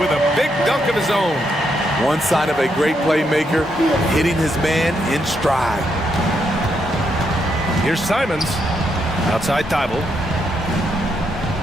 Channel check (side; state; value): both; normal; correlation 0.78